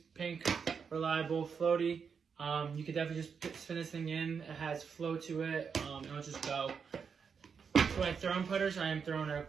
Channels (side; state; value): left; quieter; 6.2 dB